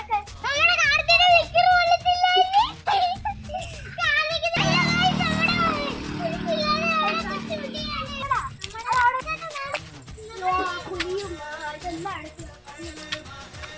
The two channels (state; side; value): identical; both; correlation 1.00